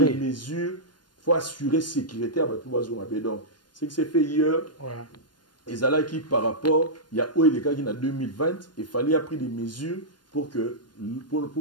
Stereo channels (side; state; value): right; late; 0.71 ms